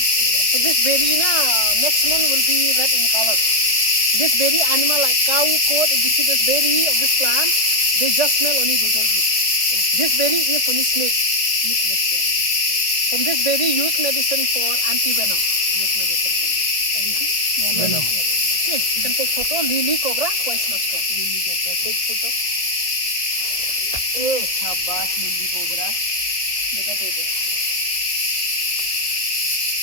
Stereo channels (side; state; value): right; late; 1.5 ms